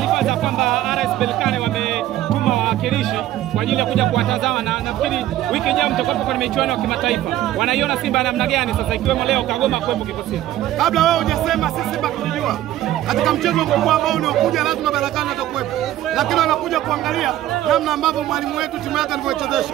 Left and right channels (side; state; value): left; quieter; 13.6 dB